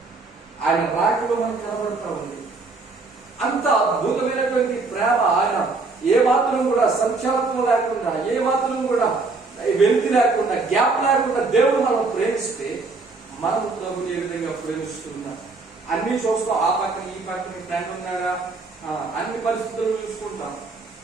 ఆయన రాకలో మనకు కనబడతా ఉంది. అంత అద్భుతమైనటువంటి ప్రేమ. ఆయన ఏ మాత్రం కూడా సంచాలత్వం లేకుండా, ఏ మాత్రం కూడా వెలితి లేకుండా, గ్యాప్ లేకుండా దేవుడు మనం ప్రేమిస్తే మనం ప్రభుని ఏ విధంగా ప్రేమిస్తున్నాం. అన్ని చూస్తాం, ఆ పక్కన ఈ పక్కన ఫ్రెండ్ ఉన్నారా, అన్ని పరిస్థితులు చూసుకుంటాం,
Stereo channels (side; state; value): left; quieter; 3.9 dB